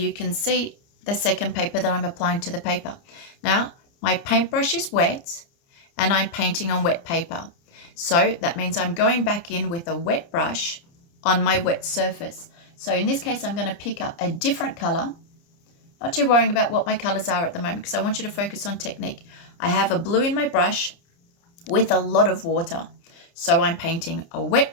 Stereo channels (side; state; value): right; late; 29 ms